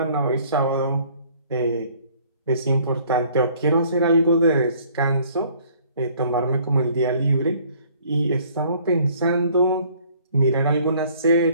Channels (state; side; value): inverted; both; correlation -0.58